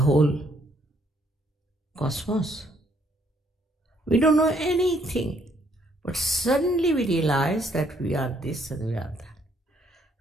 whole cosmos? We don't know anything, but suddenly we realize that we are this and we are that.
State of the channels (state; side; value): normal; both; correlation 0.68